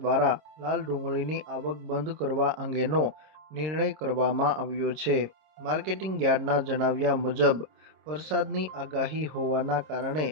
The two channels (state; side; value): late; left; 26 ms